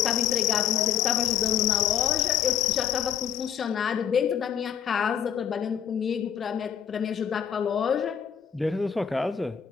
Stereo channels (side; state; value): right; quieter; 8.9 dB